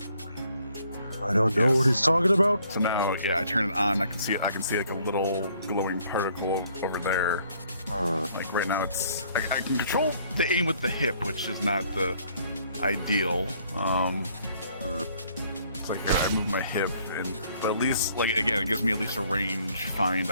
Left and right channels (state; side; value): inverted; both; correlation -0.64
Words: I don't know what he's talking about. So now, yeah, I turn it on. I can see like a little glowing particle over there. Like right now, I can control the aim with the hip, which is not the ideal. It's like here, I move my hip, but at least, like, again, it gives me at least a range find